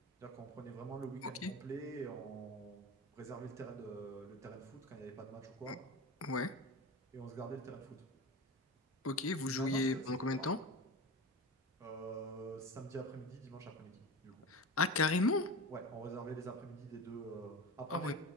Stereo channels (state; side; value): normal; both; correlation 0.29